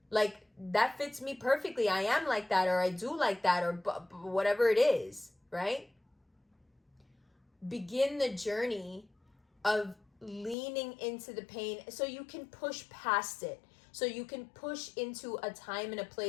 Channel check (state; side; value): drops out; right; at 10.6 s